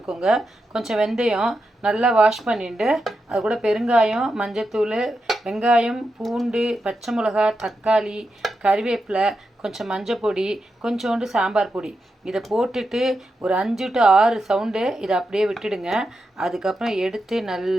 கொஞ்சம் வெந்தயம் நல்லா வாஷ் பண்ணிவிட்டு அது கூட பெருங்காயம், மஞ்சத்தூள், வெங்காயம், பூண்டு, பச்சை மிளகா, தக்காளி, கறிவேப்பிலை, கொஞ்சம் மஞ்சள் பொடி, கொஞ்சோண்டு சாம்பார் பொடி, இதை போட்டுட்டு ஒரு 5 to 6 சவுண்டு இதை அப்படியே விட்டுடுங்க. அதுக்கப்புறம் எடுத்து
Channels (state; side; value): normal; both; correlation 0.87